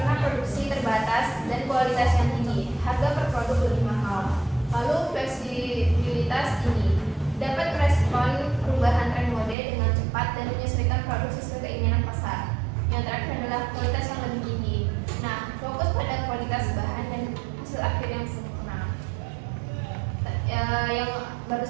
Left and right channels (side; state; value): left; drops out; at 9.6 s